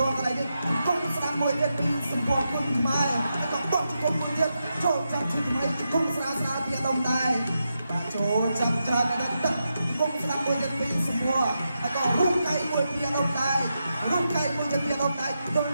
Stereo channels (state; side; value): inverted; both; correlation -0.86